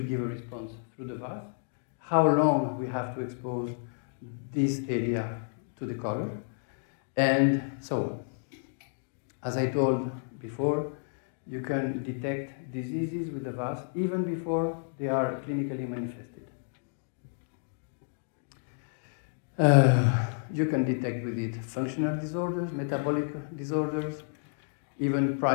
give a response through the VAS, how long we have to expose this area to the color. And so, as I told before, you can detect diseases with the VAS even before they are clinically manifested. You can detect with it functional disorders, metabolic disorders, even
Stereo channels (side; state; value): right; silent; digital silence